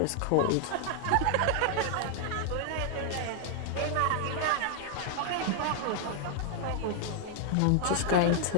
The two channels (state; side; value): different; both; correlation 0.00